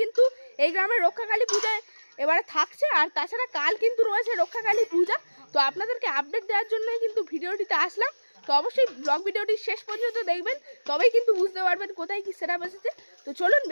কিন্তু এই গ্রামের রক্ষাকালী পূজায় এবারে থাকছে। আর তাছাড়া কাল কিন্তু রয়েছে রক্ষাকালী পূজা। তো আপনাদেরকে আপডেট দেওয়ার জন্যই কিন্তু ভিডিওটিতে আসলাম। তো অবশ্যই ব্লগ ভিডিওটি শেষ পর্যন্ত দেখবেন, তবেই কিন্তু বুঝতে পারবেন কোথায় কি সেটআপ এসেছে। তো চলুন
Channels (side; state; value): both; inverted; correlation -1.00